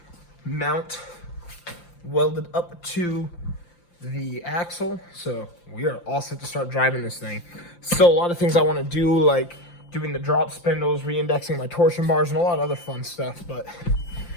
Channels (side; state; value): right; late; 5.8 ms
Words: mount welded up to the axle, so we are all set to start driving this thing. So a lot of things I want to do, like doing the drop spindles, re-indexing my torsion bars, and a lot of other fun stuff, but